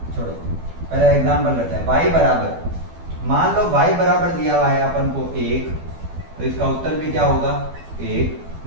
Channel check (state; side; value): late; left; 12 ms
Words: छोड़ो, पहले एग्जांपल लेते हैं। y बराबर, मान लो y बराबर दिया हुआ है अपन को 1, तो इसका उत्तर भी क्या होगा 1।